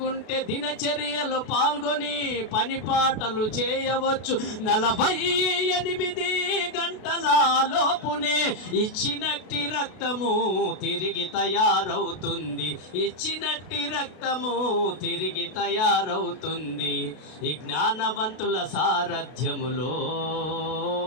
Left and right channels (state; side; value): late; right; 32 ms